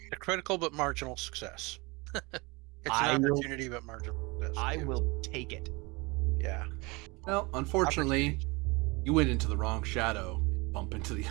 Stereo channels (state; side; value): quieter; left; 26.1 dB